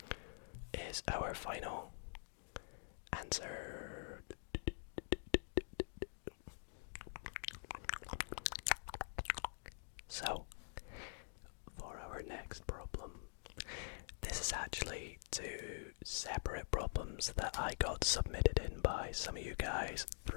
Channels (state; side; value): silent; right; digital silence